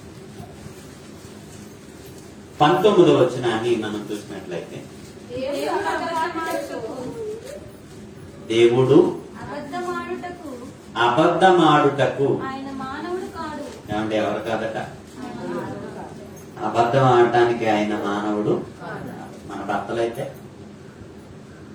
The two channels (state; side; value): identical; both; correlation 1.00